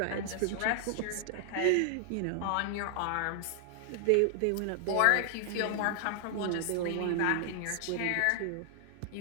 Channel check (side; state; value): both; different; correlation 0.00